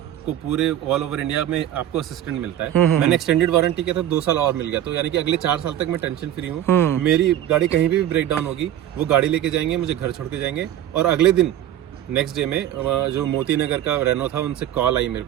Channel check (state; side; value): quieter; left; 11.7 dB